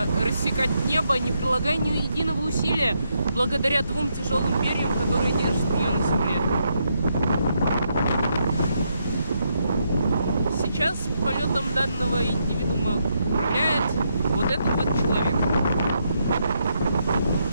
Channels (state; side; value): inverted; both; correlation -0.79